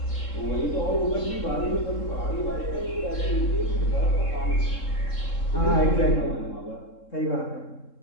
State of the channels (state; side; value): late; right; 3.7 ms